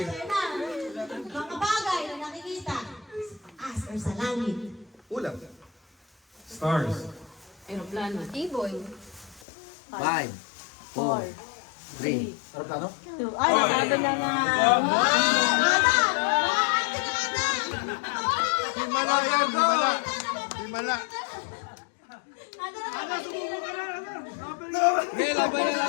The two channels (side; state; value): right; drops out; at 9.5 s